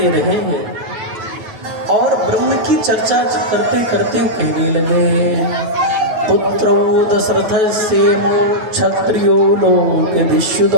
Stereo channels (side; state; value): left; late; 9.1 ms